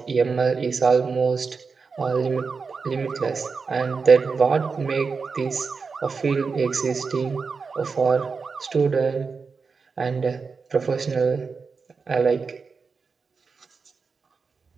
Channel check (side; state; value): left; quieter; 5.0 dB